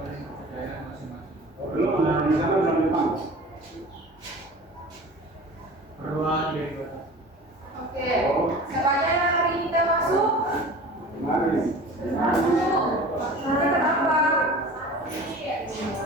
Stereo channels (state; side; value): normal; both; correlation 0.39